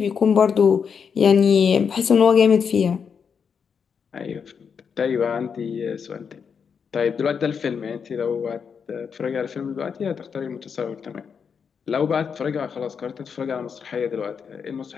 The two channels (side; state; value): right; quieter; 6.5 dB